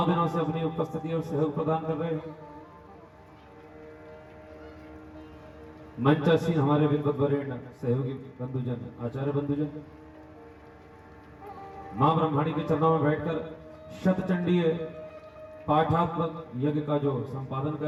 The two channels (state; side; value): identical; both; correlation 1.00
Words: दिनों से अपनी उपस्थिति और सहयोग प्रदान कर रहे हैं, मंचासीन हमारे विद्वत वरेण्य सहयोगी बंधुजन, आचार्य बंधुजन, मां ब्रह्माणी के चरणों में बैठकर शतचंडीय पाठात्मक यज्ञ का जो संपादन कर